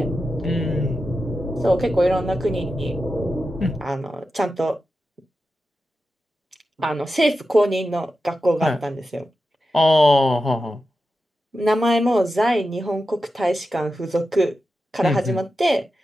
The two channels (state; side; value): normal; both; correlation 0.91